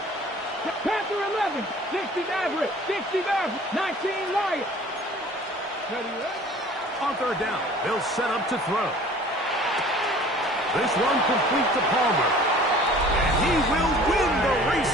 Panther 11, 60 Maverick, 60 Maverick, 19 Lion. On 3rd down, they'll set up to throw. This one complete to Palmer. And he will win the race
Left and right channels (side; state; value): both; normal; correlation 0.48